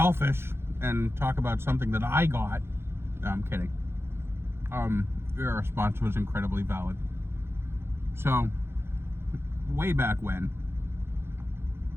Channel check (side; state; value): left; late; 0.12 ms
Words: and talk about something that I got. No, I'm kidding. Your response was incredibly valid. So, way back when,